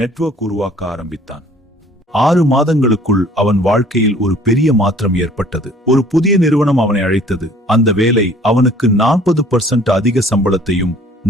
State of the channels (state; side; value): normal; both; correlation 0.54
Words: உருவாக்க ஆரம்பித்தான். 6 மாதங்களுக்குள் அவன் வாழ்க்கையில் ஒரு பெரிய மாற்றம் ஏற்பட்டது. ஒரு புதிய நிறுவனம் அவனை அழைத்தது. அந்த வேலை அவனுக்கு 40% அதிக சம்பளத்தையும்